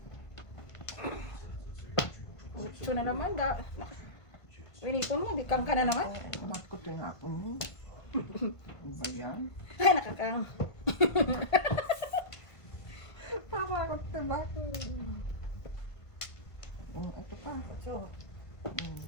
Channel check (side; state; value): right; late; 1.5 ms